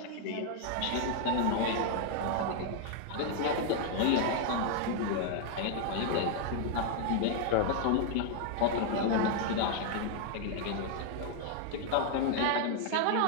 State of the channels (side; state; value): both; different; correlation 0.00